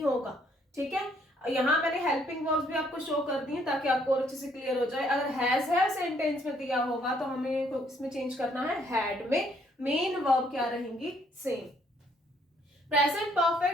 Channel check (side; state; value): both; normal; correlation 0.67